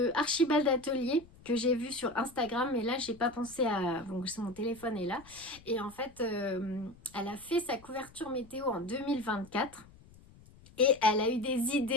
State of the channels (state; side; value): noise; left; rumble, 24 dB below the sound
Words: Archibald Atelier que j'ai vue sur Instagram, mais là j'ai pas pensé à... Donc mon téléphone est là. Et en fait, elle a fait sa couverture météo en 2024. Et elle a eu des